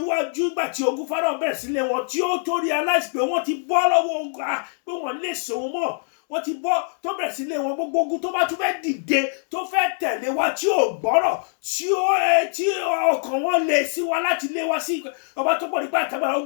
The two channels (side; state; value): right; silent; 63 dB below the other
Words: ìgbà tí ogun Fáráò bẹ̀rẹ̀ sílé wọn, tí ó tó realize pé wọ́n ti bọ́ lọ́wọ́ ogun, pé wọ́n lè sòun mọ́. Wọ́n ti bọ́ tó bẹ̀rẹ̀ sílé wọn, gbogbo ogun tó bá tún fẹ́ dìde, tó fẹ́ tẹ̀lé wa, tí ò gbọ́rọ̀, tí ọkàn wọn lè sí wa láti lé wa sí ọba tó pọ̀ nípa àtàgbára.